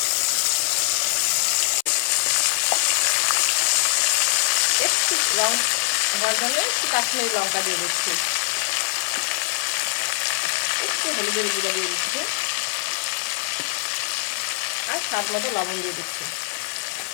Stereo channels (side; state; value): right; silent; 59 dB below the other